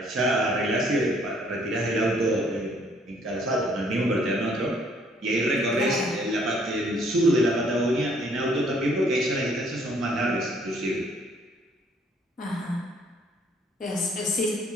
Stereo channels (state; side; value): normal; both; correlation 0.63